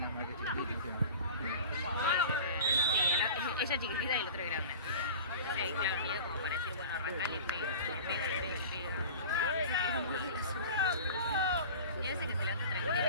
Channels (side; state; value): both; inverted; correlation -0.36